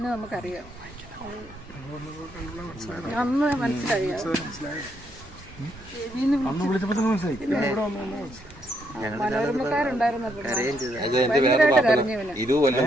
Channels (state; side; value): normal; both; correlation 0.75